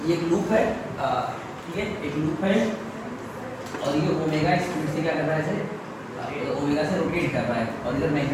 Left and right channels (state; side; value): identical; both; correlation 1.00